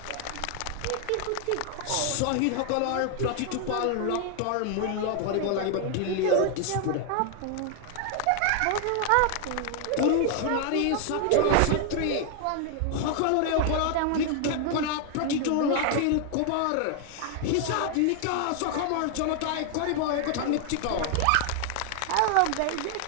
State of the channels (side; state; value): both; different; correlation 0.00